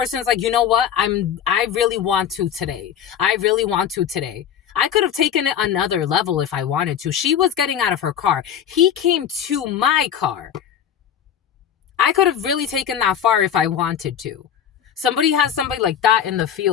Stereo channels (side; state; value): right; quieter; 9.0 dB